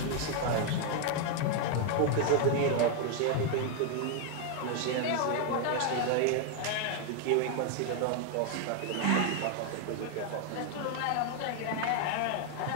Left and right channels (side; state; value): both; different; correlation 0.01